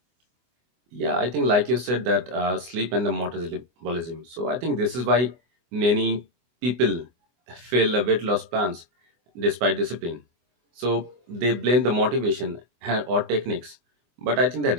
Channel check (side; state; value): left; late; 24 ms